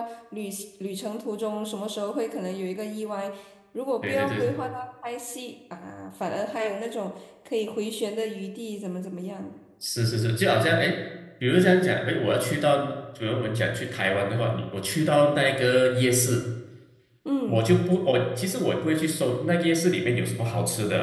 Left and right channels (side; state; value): both; identical; correlation 1.00